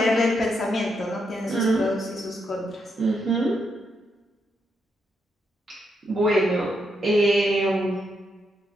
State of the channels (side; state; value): both; normal; correlation 0.80